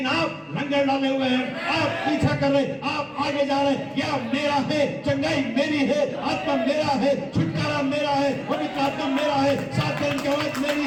आप लंगर डाले हुए हैं, आप पीछा कर रहे, आप आगे जा रहे। क्या मेरा है, चंगाई मेरी है, आत्मा मेरा है, छुटकारा मेरा है, पवित्र आत्मा मेरा है, सात दिन की आवाज मेरी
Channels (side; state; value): both; identical; correlation 1.00